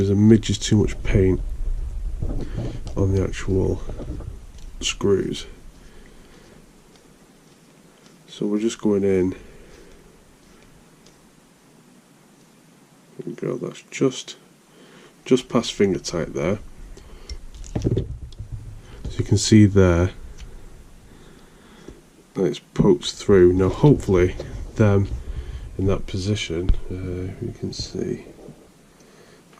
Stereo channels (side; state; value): both; identical; correlation 1.00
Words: a midge too much paint on the actual screws, so we're just going in. There we go, that's just past finger tight there. So you can see there that it's poked through. Now hopefully them in that position, you can see